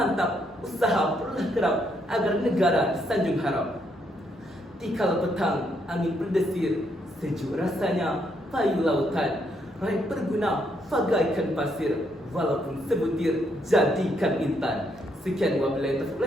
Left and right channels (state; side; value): normal; both; correlation 0.74